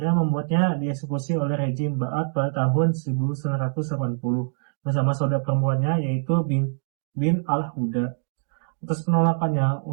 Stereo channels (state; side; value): silent; left; digital silence